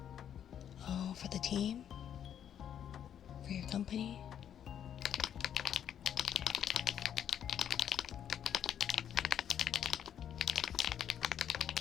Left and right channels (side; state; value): right; quieter; 9.3 dB